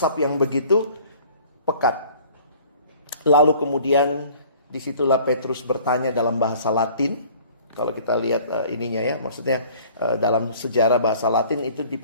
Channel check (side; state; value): both; inverted; correlation -0.51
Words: yang begitu pekat. Lalu kemudian disitulah Petrus bertanya dalam bahasa Latin. Kalau kita lihat ininya ya, maksudnya dalam sejarah bahasa Latin itu